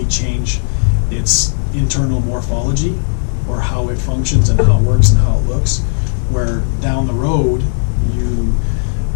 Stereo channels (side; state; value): right; silent; digital silence